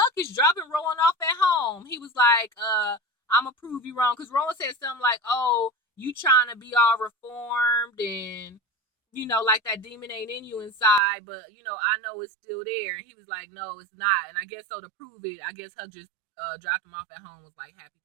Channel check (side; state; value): left; drops out; at 11.0 s